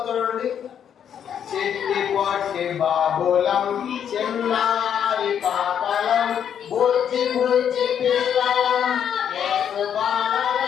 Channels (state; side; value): quieter; right; 8.7 dB